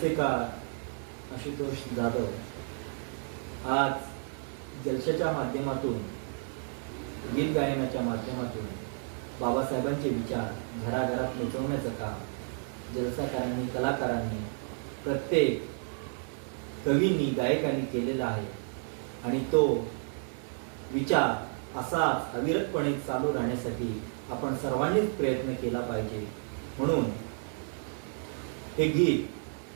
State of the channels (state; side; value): silent; left; 57 dB below the other